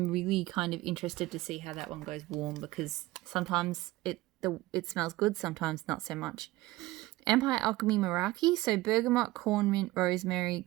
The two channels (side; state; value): left; quieter; 18.7 dB